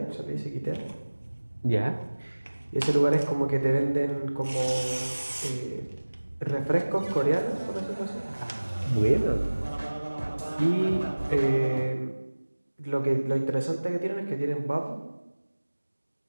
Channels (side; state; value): both; inverted; correlation -1.00